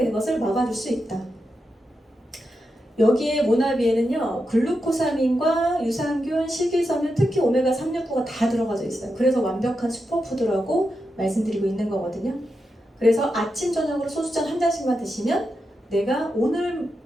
것을 막아줄 수 있다. 여기에 모나비에는요, 글루코사민과 유산균, 식이섬유, 특히 오메가 3, 6, 9가 다 들어가져 있어요. 그래서 완벽한 슈퍼푸드라고 말씀드리고 있는 거거든요. 그래서 아침, 저녁으로 소주잔 한 잔씩만 드시면 내가 오늘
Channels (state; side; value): normal; both; correlation 0.87